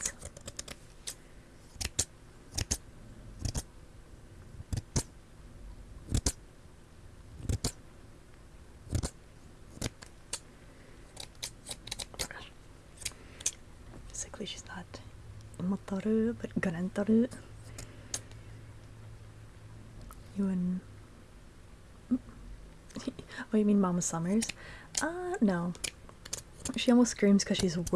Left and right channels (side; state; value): both; identical; correlation 1.00